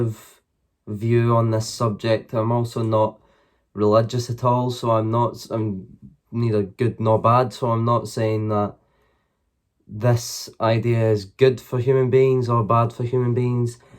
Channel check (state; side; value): identical; both; correlation 1.00